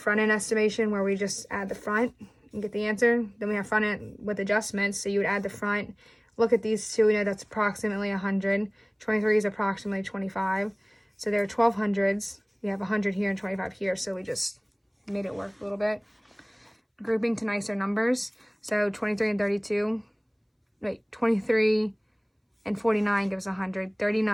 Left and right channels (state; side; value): identical; both; correlation 1.00